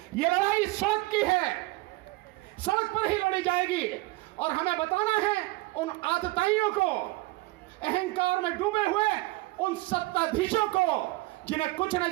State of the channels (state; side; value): quieter; left; 21.4 dB